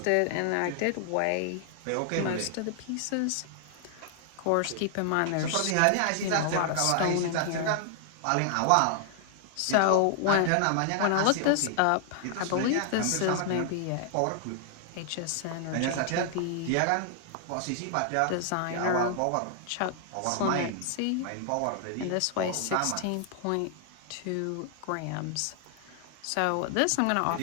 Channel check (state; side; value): different; both; correlation 0.00